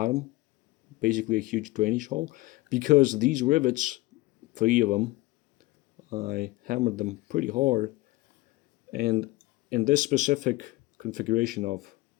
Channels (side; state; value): right; quieter; 19.9 dB